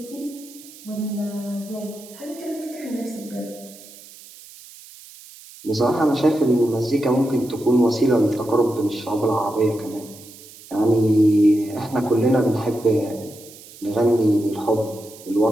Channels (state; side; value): noise; right; hiss, 20 dB below the sound